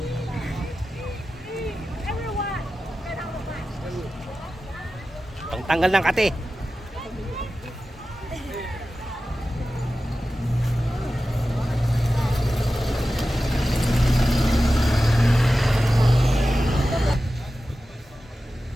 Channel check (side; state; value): both; normal; correlation 0.94